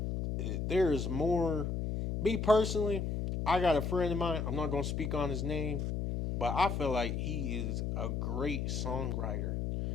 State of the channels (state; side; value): noise; left; hum, 1 dB below the sound